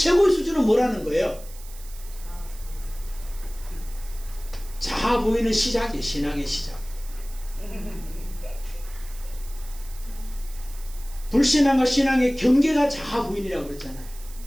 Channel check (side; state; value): right; noise; hiss, 19 dB below the sound